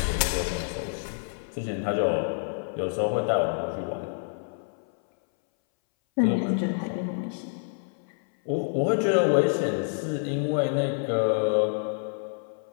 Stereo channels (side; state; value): right; silent; 60 dB below the other